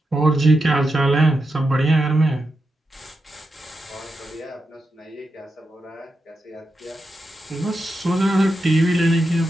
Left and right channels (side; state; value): both; normal; correlation 0.87